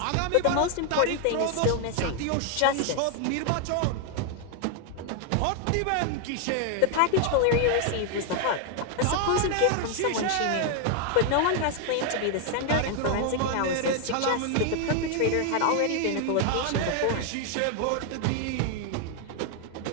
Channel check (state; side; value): different; both; correlation 0.00